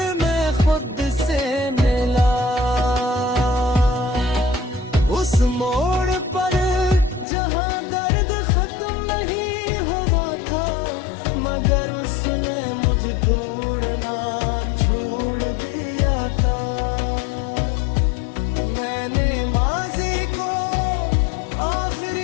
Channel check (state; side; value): drops out; right; at 7.2 s